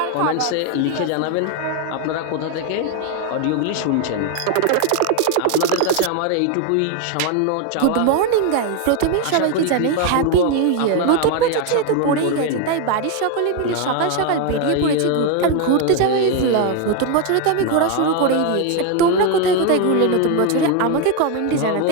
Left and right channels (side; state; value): both; different; correlation 0.01